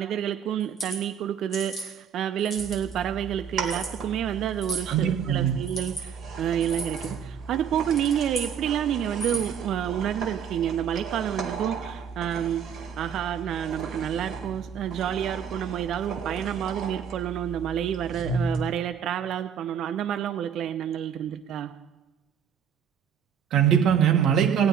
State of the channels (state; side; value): quieter; left; 8.2 dB